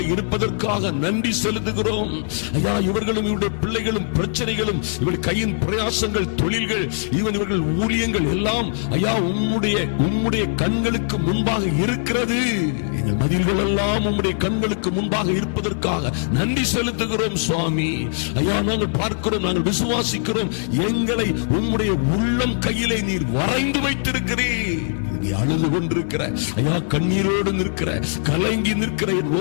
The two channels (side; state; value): right; silent; 57 dB below the other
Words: இருப்பதற்காக நன்றி செலுத்துகிறோம். ஐயா, இவர்களும் இவருடைய பிள்ளைகளும் பிரச்சனைகளும், இவர்கள் கையின் பிரயாசங்கள், தொழில்கள், இவர்கள் ஊழியங்கள் எல்லாம் ஐயா உம்முடைய கண்களுக்கு முன்பாக இருக்கிறது. எங்கள் மதில்கள் எல்லாம் உம்முடைய கண்களுக்கு முன்பாக இருப்பதற்காக நன்றி செலுத்துகிறோம் சுவாமி. ஐயா, நாங்கள் பார்க்கிறோம், நாங்கள் விசுவாசிக்கிறோம். எங்களை உம்முடைய உள்ளம் கையிலே நீர் வரைந்து வைத்திருக்கிறீர். அழுது கொண்டிருக்கிற, ஐயா, கண்ணீரோடு நிற்கிற, கலங்கி நிற்கிற